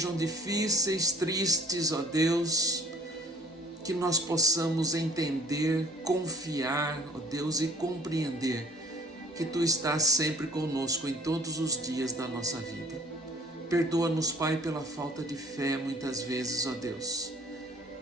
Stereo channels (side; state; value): both; normal; correlation 0.50